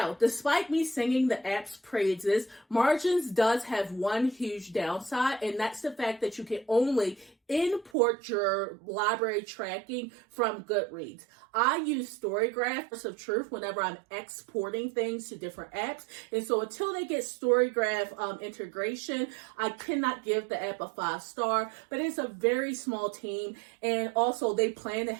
despite me singing the app's praises, Margins does have one huge downside, and that's the fact that you can only import your library tracking from Goodreads. I use Storygraph of truth whenever I'm exporting things to different apps, and so until they get Storygraph integration, I cannot give the app a 5-star, but it's a very small team, and also they plan to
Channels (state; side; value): drops out; left; at 7.9 s